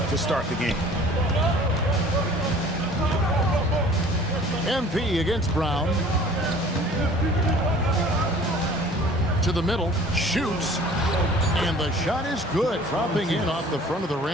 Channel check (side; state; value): both; normal; correlation 0.49